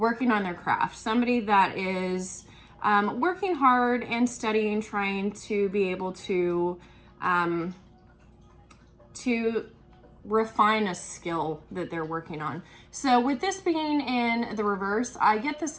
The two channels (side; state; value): both; identical; correlation 1.00